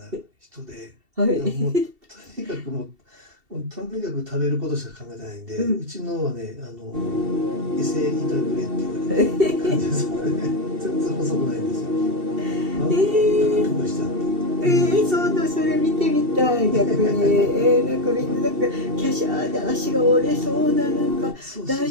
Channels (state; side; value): late; left; 2.7 ms